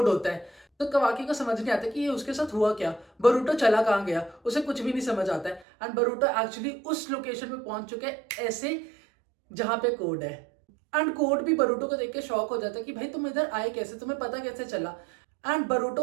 होता है। तो कवाकी को समझ नहीं आता कि ये उसके साथ हुआ क्या, बरूटो चला कहाँ गया, उसे कुछ भी नहीं समझ आता है। एंड बरूटो एक्चुअली उस लोकेशन पे पहुंच चुके हैं ऐसे जहां पे कोड है। एंड कोड भी बरूटो को देख के शॉक हो जाता है कि भाई तुम इधर आए कैसे, तुम्हें पता कैसे चला। एंड बरूटो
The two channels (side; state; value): left; drops out; at 5.7 s